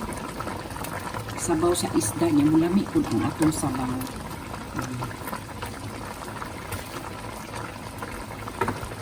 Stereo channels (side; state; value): both; identical; correlation 1.00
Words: sabaw sa isda niya, mulami po ang atong sabaw.